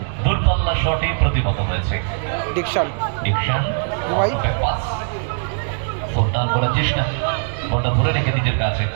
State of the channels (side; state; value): left; silent; 65 dB below the other